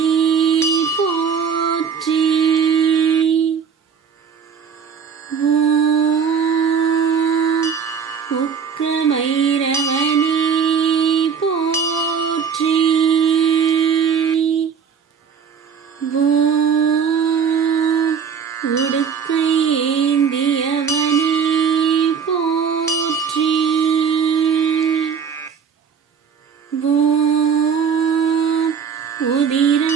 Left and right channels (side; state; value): left; quieter; 6.8 dB